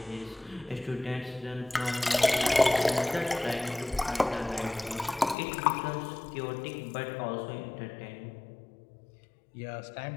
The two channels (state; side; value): drops out; right; at 5.4 s